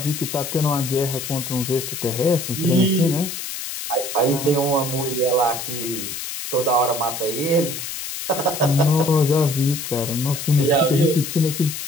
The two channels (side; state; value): left; noise; hiss, 7 dB below the sound